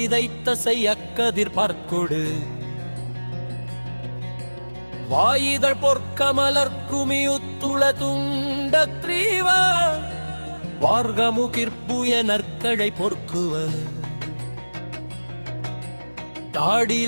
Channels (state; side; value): inverted; both; correlation -1.00